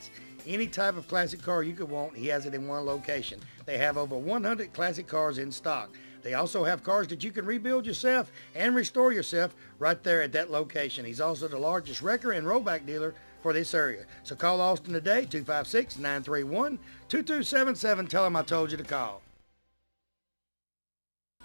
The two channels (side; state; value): both; inverted; correlation -1.00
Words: Any type of classic car you could want, he has it in one location. They have over 100 classic cars in stock. They also have cars that you can rebuild yourself and restore yourself right there at that location. He's also the largest wrecker and rollback dealer for this area. So call Austin today, 256-931-2277. Tell him I told you to call.